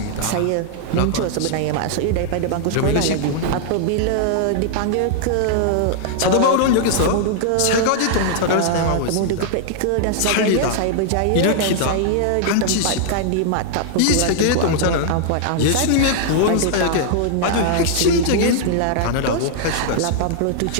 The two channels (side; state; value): both; different; correlation -0.01